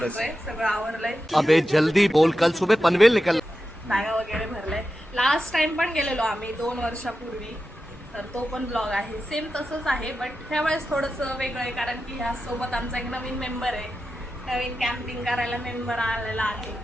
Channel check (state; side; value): normal; both; correlation 0.91